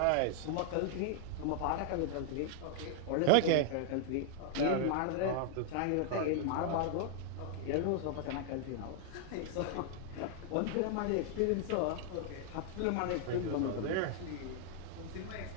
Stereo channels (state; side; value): different; both; correlation 0.00